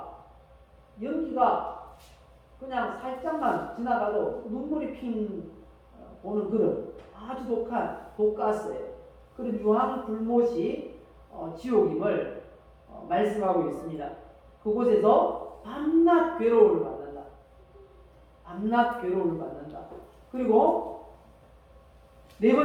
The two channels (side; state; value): both; identical; correlation 1.00